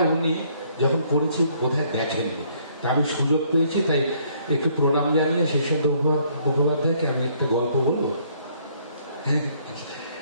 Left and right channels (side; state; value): both; inverted; correlation -0.65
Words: উনি যখন করেছি বোধহয় দেখেননি। তা আমি সুযোগ পেয়েছি, তাই একটু প্রণাম জানিয়ে শীর্ষেন্দু মুখোপাধ্যায়কে আমি একটা গল্প বলবো।